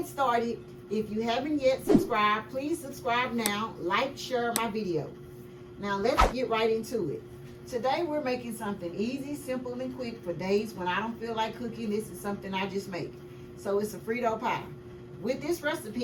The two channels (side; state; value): both; identical; correlation 1.00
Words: started, if you haven't yet subscribed, please subscribe now, like, share my video. Now let's get right into it. Today we're making something easy, simple, and quick for days when I don't feel like cooking. This is something I just make. So it's a Frito pie. With this